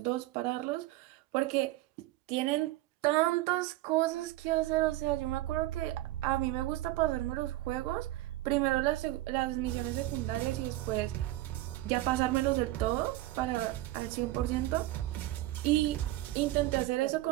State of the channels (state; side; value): quieter; left; 16.7 dB